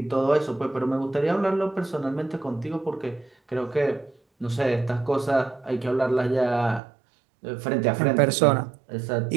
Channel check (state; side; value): drops out; left; at 6.8 s